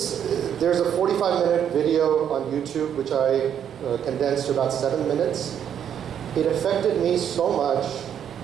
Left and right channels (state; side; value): quieter; left; 9.0 dB